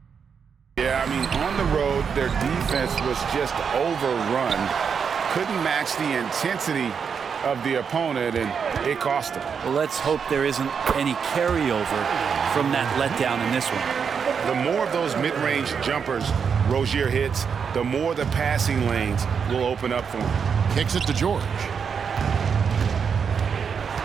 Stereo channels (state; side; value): quieter; left; 6.5 dB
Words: Yeah, I mean, on the road, their defense was just overrun. Couldn't match the intensity of the opponent, and it cost them. Well, let's hope there isn't any carryover from that letdown in this one. The more of those mid-range jumpers Rozier hits, the more the passing lanes will open up for him. Kicks it to George.